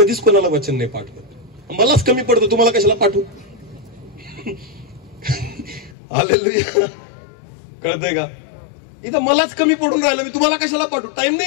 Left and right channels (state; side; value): drops out; right; at 6.0 s